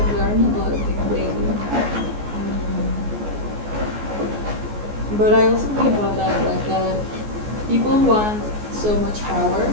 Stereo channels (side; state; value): left; late; 14 ms